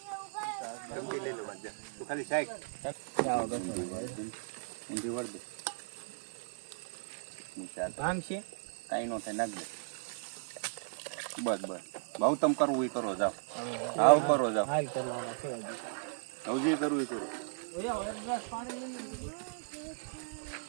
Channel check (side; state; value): left; silent; digital silence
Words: ચમચી લઈ લો બાજુ તું ખાલી સાઈડ ઊંધી વળ દે કામ છે કાંઈ નો થાય નાખ દે બસ બસ બહુ તમ કરવું એ કરો જાઓ આવ કરો જાઓ હાલ કરવાના છે હજી કરવું એ કરો